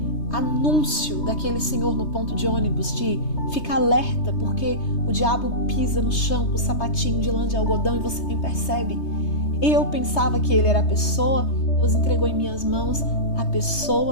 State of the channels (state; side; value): late; right; 3.2 ms